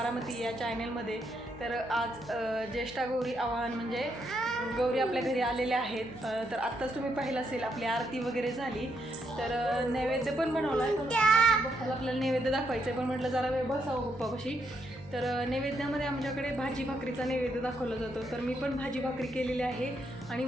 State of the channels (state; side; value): noise; right; hum, 19 dB below the sound